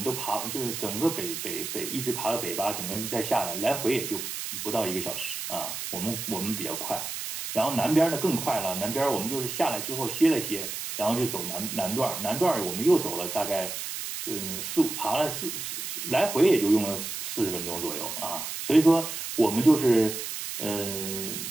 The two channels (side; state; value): right; noise; hiss, 6 dB below the sound